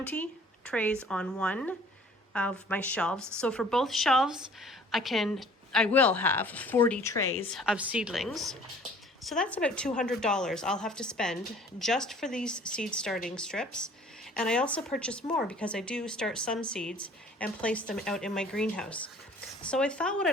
trays on one of my shelves. So for both shelves, I will have 40 trays of seedlings. So that's about $200 I'll have to spend just for these seed starting strips. And I also purchase more because I do start some seeds and place them out in my greenhouse. So I thought what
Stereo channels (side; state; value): both; normal; correlation 0.52